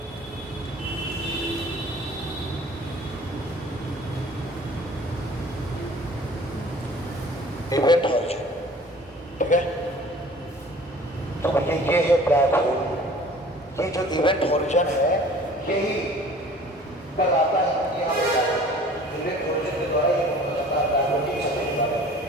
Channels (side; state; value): both; normal; correlation 0.48